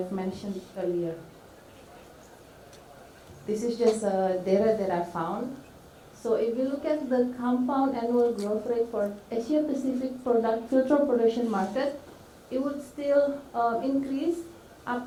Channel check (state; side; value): identical; both; correlation 1.00